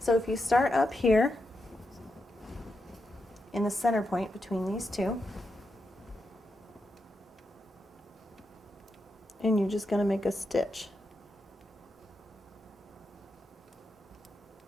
if you start up here in the center point between these two, and you're just going to make a stitch.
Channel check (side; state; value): both; normal; correlation 0.85